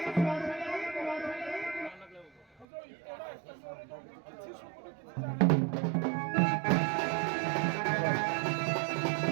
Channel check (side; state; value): left; drops out; at 2.7 s